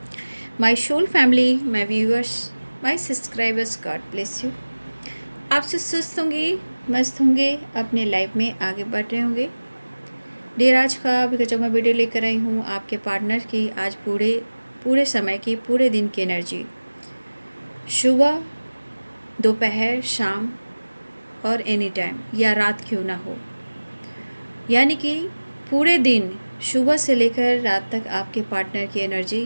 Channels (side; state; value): both; inverted; correlation -1.00